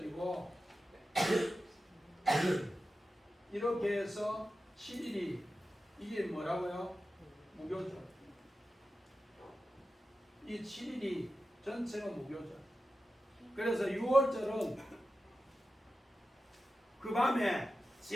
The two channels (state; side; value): normal; both; correlation 0.92